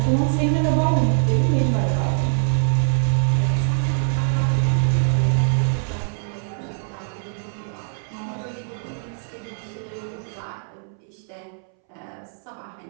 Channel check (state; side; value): silent; left; 63 dB below the other